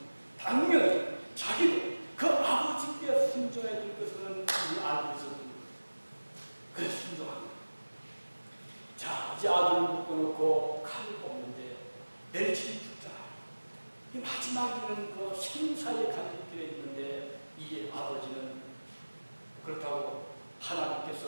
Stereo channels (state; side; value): inverted; both; correlation -1.00